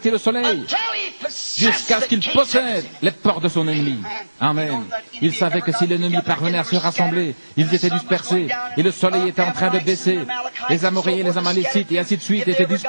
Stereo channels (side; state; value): both; inverted; correlation -1.00